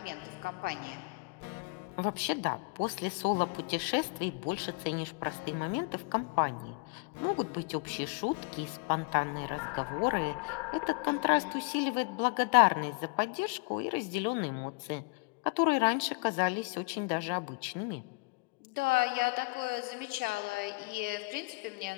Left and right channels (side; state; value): right; quieter; 30.3 dB